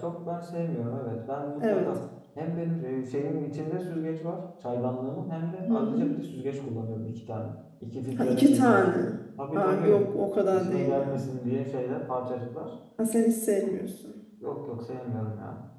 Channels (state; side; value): identical; both; correlation 1.00